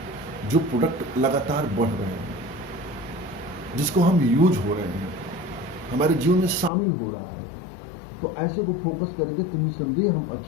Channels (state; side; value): drops out; right; at 6.7 s